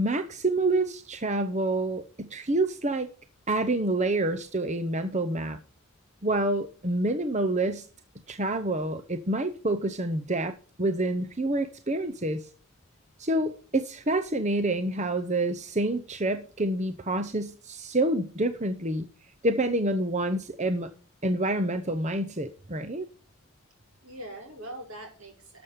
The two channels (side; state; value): both; normal; correlation 0.39